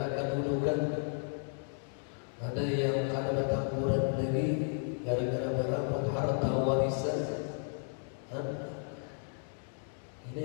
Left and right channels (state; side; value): silent; right; 55 dB below the other